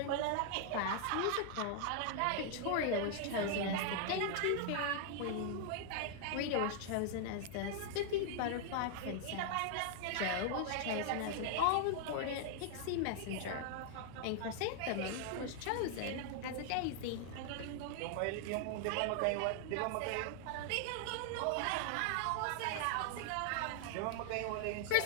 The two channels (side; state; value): both; different; correlation 0.00